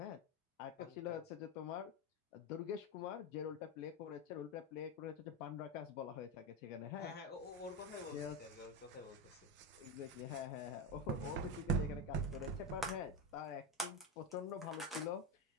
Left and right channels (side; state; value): both; normal; correlation 0.14